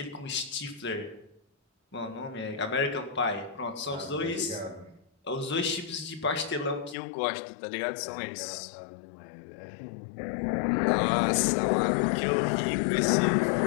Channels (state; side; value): drops out; right; at 7.0 s